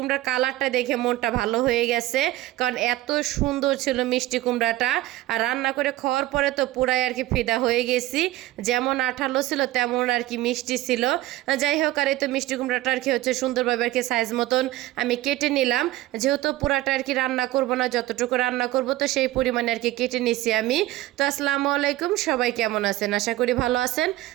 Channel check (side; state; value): left; quieter; 16.3 dB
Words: কালারটা দেখে মনটা ভালো হয়ে গেছে, কারণ এত সুন্দর ছিল মিষ্টি কুমড়াটা। আর রান্না করে খাওয়ার পরে তো পুরাই আর কি ফিদা হয়ে গেছি, যেমন আঠালো ছিল তেমন আর কি মিষ্টি ছিল। যাই হোক, আর এই তো মিষ্টি কুমড়াটা আর কি হচ্ছে সুন্দরভাবে আর কি সাইজ মতন আমি কেটে নিলাম, যেহেতু পুরাটা আর কি রান্না করব না, যতটুকু রান্না করব তো সেই পরিমাণে আর কি কেটে নিছি আমি। তো আসসালামু আলাইকুম, সবাই কেমন আছেন? আশা করি ভালো আছেন।